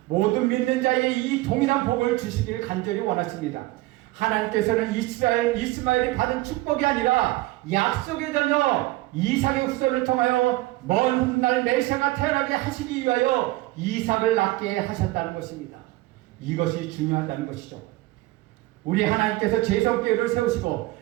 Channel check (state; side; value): quieter; left; 19.3 dB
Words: 모든 믿는 자에게 이 동일한 복을 주시기를 간절히 원하십니다. 하나님께서는 이스마엘이 받은 축복이 아니라 약속의 자녀 이삭의 후손을 통하여 먼 훗날 메시아가 태어나게 하시기 위하여 이삭을 낳게 하셨다는 것입니다. 이것이 중요하다는 것이죠. 우리 하나님께서 제성교회를 세우시고